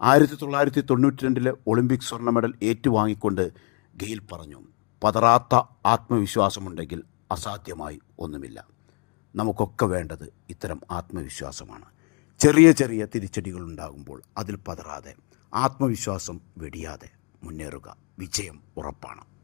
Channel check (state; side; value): quieter; right; 35.1 dB